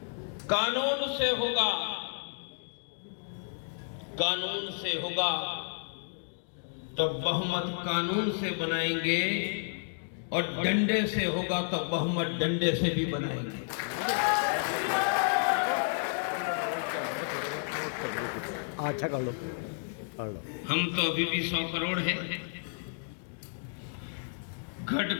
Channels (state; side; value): silent; right; digital silence